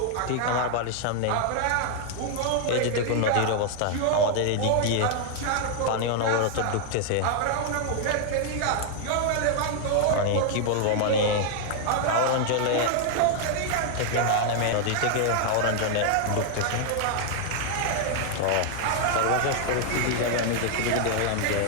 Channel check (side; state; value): both; different; correlation 0.00